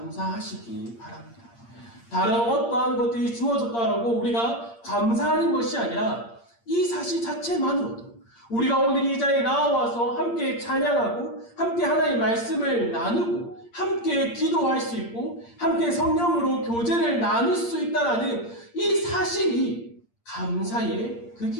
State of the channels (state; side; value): late; right; 8.7 ms